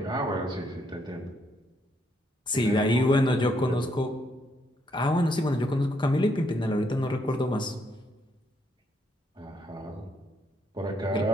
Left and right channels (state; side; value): normal; both; correlation 0.74